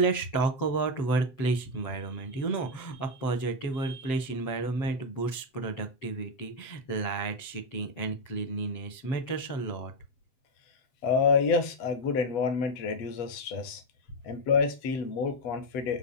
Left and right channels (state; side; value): late; right; 7.7 ms